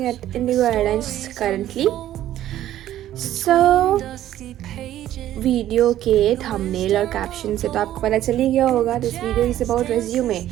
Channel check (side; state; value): left; quieter; 12.8 dB